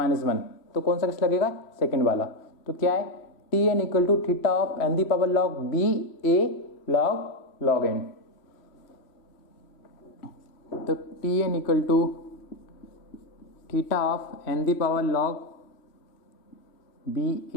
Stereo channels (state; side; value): late; right; 3.0 ms